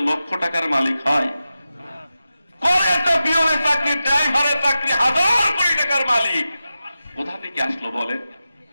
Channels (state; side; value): inverted; both; correlation -0.92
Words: লক্ষ টাকার মালিক হয়? করে একটা পিয়নের চাকরি, ড্রাইভারের চাকরি, 1000 কোটি টাকার মালিক কোথা থেকে আসলো বলেন?